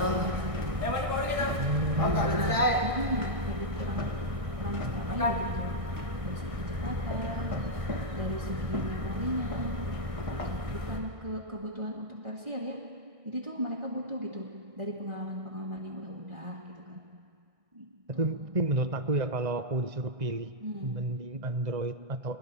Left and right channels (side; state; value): left; late; 1.6 ms